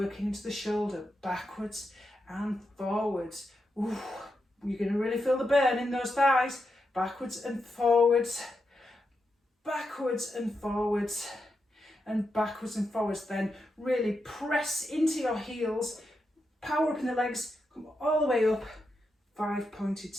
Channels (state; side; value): normal; both; correlation 0.86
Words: into the shoulder, backwards and forwards. Ooh, you're going to really feel the burn in those thighs. Backwards and forwards, backwards and forwards, and backwards and forwards. Then really press into your heels, power up in the legs, come all the way up, 5-pointed